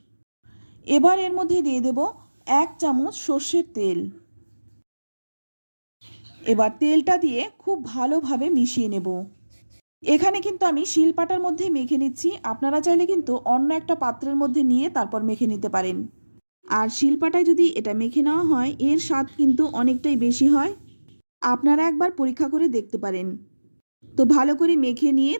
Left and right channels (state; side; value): inverted; both; correlation -1.00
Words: এবার এর মধ্যে দিয়ে দেব 1 চামচ সর্ষের তেল। এবার তেলটা দিয়ে খুব ভালোভাবে মিশিয়ে নেব। এখানে কিন্তু আমি শিলপাটার মধ্যে মেখে নিচ্ছি। আপনারা চাইলে কিন্তু অন্য একটা পাত্রের মধ্যে নিয়ে তারপর মেখে নিতে পারেন। আর শিলপাটায় যদি এটা মেখে নেওয়া হয়, এর স্বাদ কিন্তু অনেকটাই বেশি হয়। আপনারা একবার পরীক্ষা করে দেখতে পারেন। তো ভালো করে মেখে নিয়ে